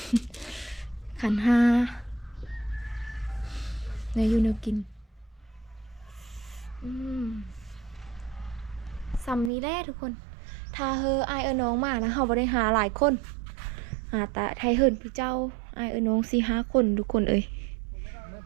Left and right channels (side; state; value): left; drops out; at 9.5 s